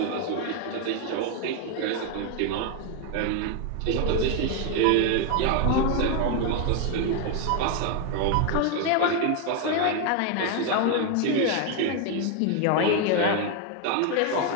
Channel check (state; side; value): different; both; correlation 0.01